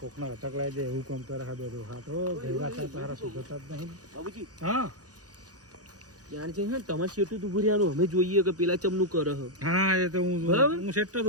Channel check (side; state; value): left; late; 0.67 ms